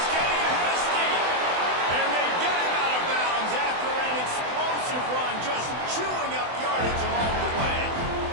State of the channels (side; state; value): left; late; 24 ms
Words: getting ahead of steam. And they get him out of bounds after an explosive run, just chewing up yardage along the way.